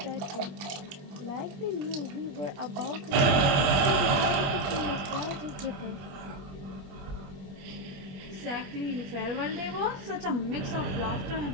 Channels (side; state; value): left; late; 21 ms